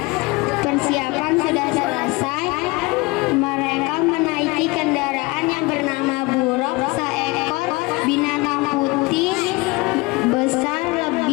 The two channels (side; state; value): right; quieter; 24.2 dB